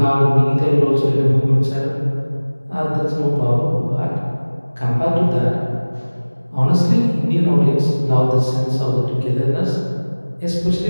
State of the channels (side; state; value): both; inverted; correlation -1.00